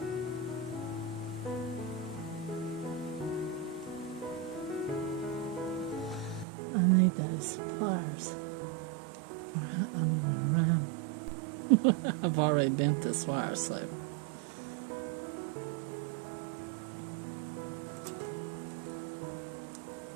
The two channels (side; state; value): left; drops out; at 6.5 s